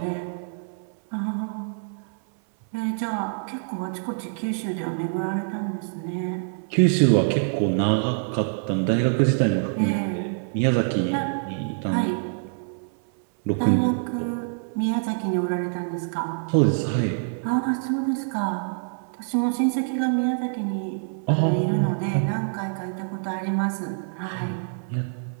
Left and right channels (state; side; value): silent; left; 61 dB below the other